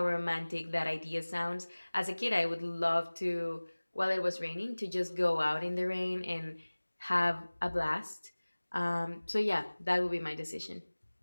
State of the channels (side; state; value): both; inverted; correlation -1.00